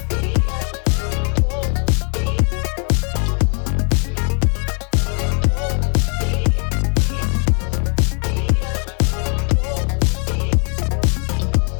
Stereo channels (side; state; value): right; quieter; 39.6 dB